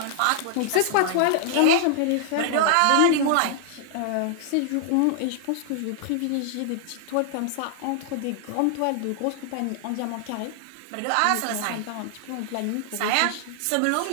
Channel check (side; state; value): both; different; correlation -0.01